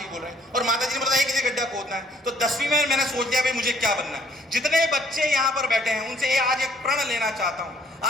बोल रहे हैं। और माता जी ने बताया कि गड्ढा खोदना है, तो 10वीं में मैंने सोच लिया भाई मुझे क्या बनना है। जितने बच्चे यहाँ पर बैठे हैं उनसे आज एक प्रण लेना चाहता हूँ।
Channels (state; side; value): normal; both; correlation 0.63